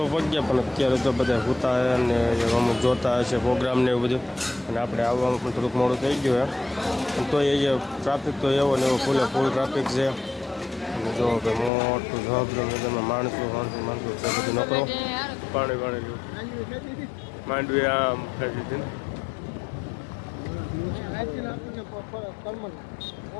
પગ્યા પણ અત્યારે તો બધા સૂતા અને અમુક જોતા હશે પ્રોગ્રામ ને એવું બધું, અને આપણે આવવામાં પણ થોડુંક મોડું થઈ ગયું પણ તો એ ટ્રાફિક તો એવો ને એવો ફૂલ ટ્રાફિક છે. અને જો ભાઈ મોટું જવાબદાર માણસો છે બધું નકરો પાણી માંડવી આમ ખાઈ દીધી ને.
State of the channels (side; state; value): right; drops out; at 11.7 s